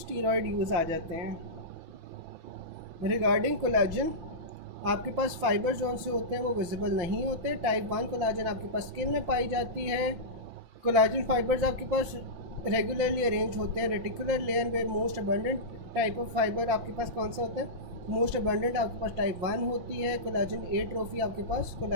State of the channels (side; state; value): left; late; 5.9 ms